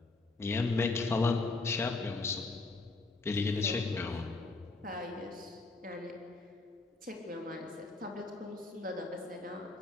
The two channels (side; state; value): right; quieter; 3.5 dB